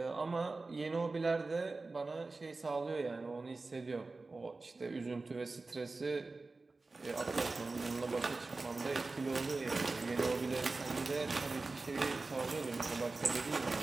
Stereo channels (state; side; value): quieter; left; 3.6 dB